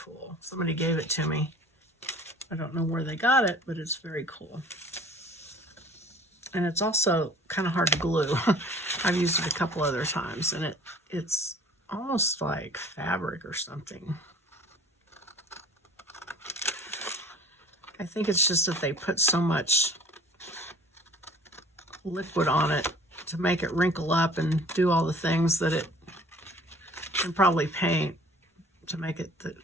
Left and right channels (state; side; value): normal; both; correlation 0.49